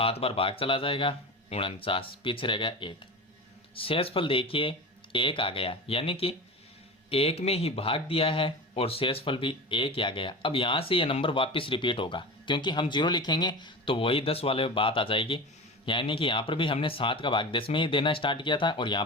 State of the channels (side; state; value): both; normal; correlation 0.29